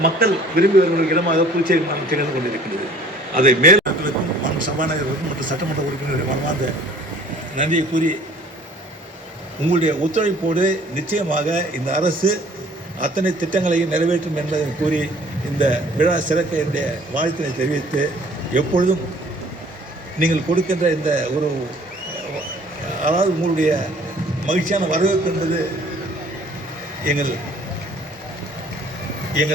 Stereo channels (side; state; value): both; normal; correlation 0.53